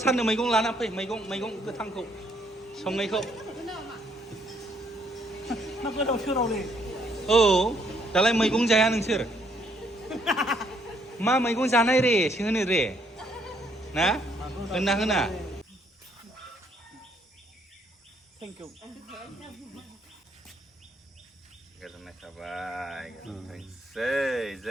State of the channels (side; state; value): both; normal; correlation 0.69